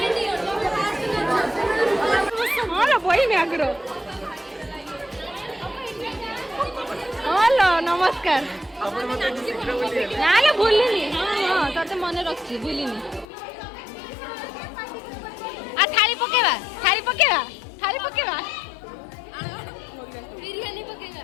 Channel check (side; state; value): right; drops out; at 13.2 s